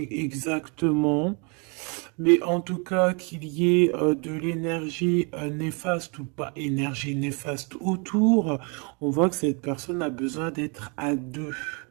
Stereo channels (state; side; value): quieter; left; 33.9 dB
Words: exactement. Mais en tout cas, qu'il y ait de l'énergie néfaste ou pas énergie néfaste autour, on voit que cette personne a besoin d'être à deux.